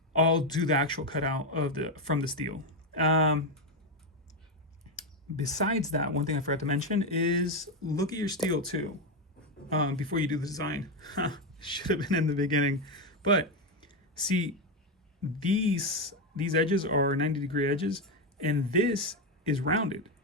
I'll do the actual cutout of the from the steel. Um, Besides that, one thing I forgot to mention is look at your steel too, before you do the design. Should have been in the beginning, but see, these edges are 90-degree edges, and this is rounded.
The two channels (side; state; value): both; normal; correlation 0.09